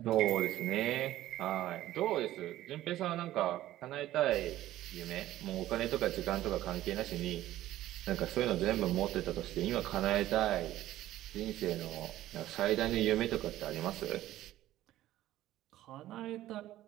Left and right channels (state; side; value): quieter; left; 14.4 dB